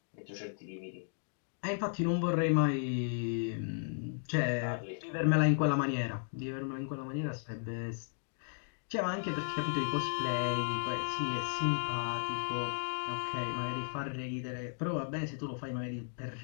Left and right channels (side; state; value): right; silent; digital silence